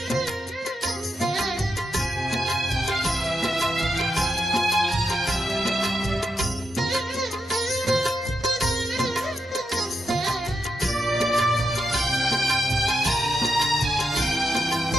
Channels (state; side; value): normal; both; correlation 0.84